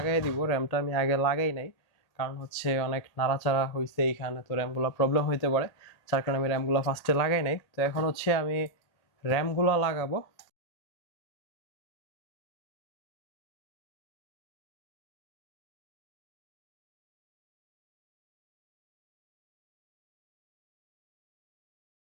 দিব। র্যামটা আমি আগে লাগাই নাই, কারণ হচ্ছে অনেক নাড়াচাড়া হয়েছে এইখানে, তো র্যামগুলো প্রবলেম হইতে পারে, যার কারণে আমি র্যামগুলো ফার্স্টে লাগাই নাই। তো এখন হচ্ছে আমি র্যামগুলো লাগাবো।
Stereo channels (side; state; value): right; late; 1.8 ms